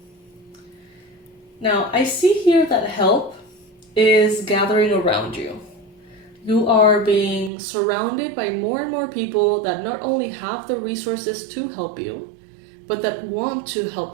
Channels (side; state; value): left; drops out; at 7.5 s